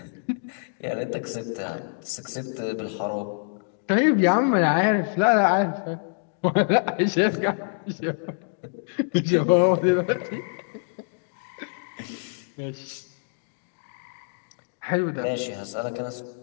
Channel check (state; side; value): silent; right; digital silence